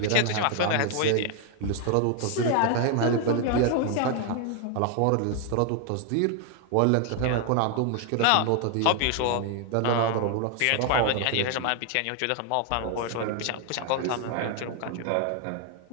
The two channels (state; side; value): different; both; correlation 0.00